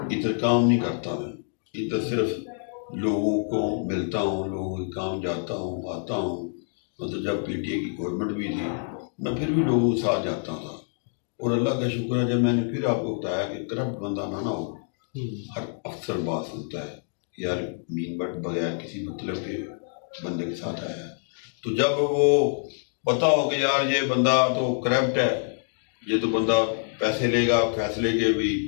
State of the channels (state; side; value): silent; right; digital silence